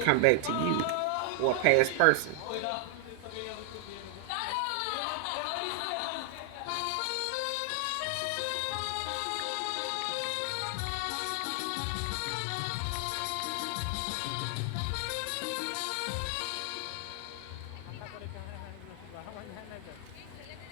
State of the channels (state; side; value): different; both; correlation 0.00